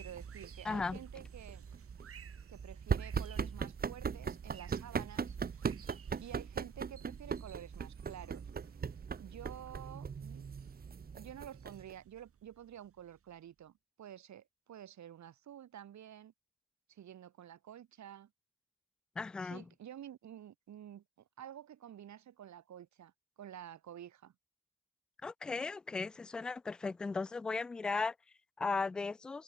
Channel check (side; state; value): both; normal; correlation 0.64